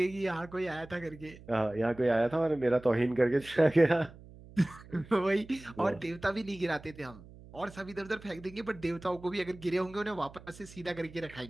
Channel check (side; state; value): right; noise; hum, 19 dB below the sound